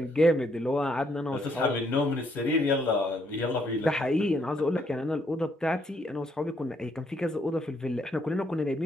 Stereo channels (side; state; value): both; normal; correlation 0.72